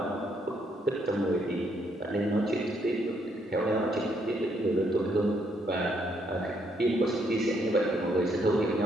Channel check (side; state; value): both; normal; correlation 0.73